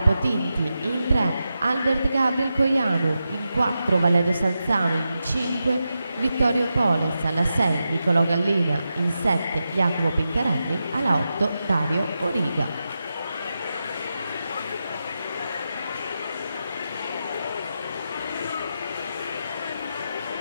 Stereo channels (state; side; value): inverted; both; correlation -0.89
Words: Tinti, in 3 Albert Gabriel Coianu, in 4 Valerio Salzano, in 5 Vittorio Poles, alla 6 Nicolò Gallina, in 7 Jacopo Pincarelli, alla 8 Dario Origa.